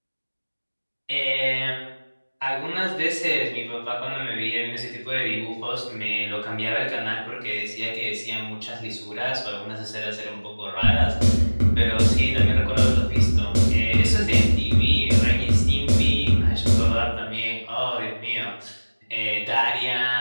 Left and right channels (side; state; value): both; inverted; correlation -1.00